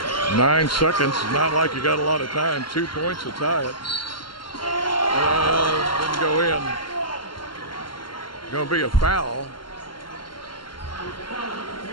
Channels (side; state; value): right; late; 0.72 ms